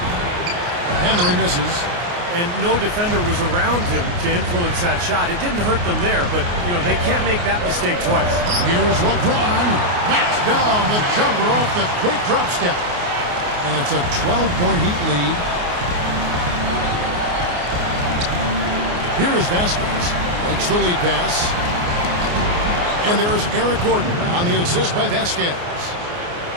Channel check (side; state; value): left; late; 29 ms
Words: Henry misses. And no defender was around him to influence that shot. It didn't hurt them there, but, you know, they can't make that mistake twice. Here's LeBron. Knocks down the jumper off the quick drop step. And it's a 12-point Heat lead. Here is Vasquez. Makes the lead pass. And there's Eric Gordon on the assist by Vasquez.